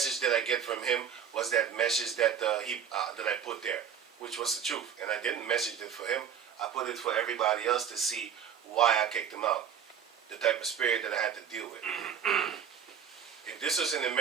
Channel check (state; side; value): quieter; left; 8.1 dB